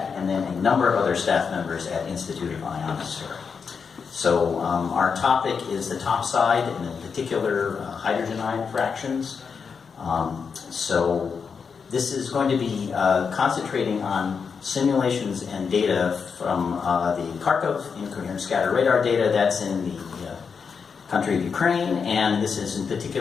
and then a number of other staff members at Institute of Ionosphere. So our topic is the top side, and in particular hydrogen ion fractions. So this is going to be concentrating on simulations and data from the Kharkov incoherent scatter radar data. That's in the country of Ukraine, and this is in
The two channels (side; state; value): right; quieter; 5.9 dB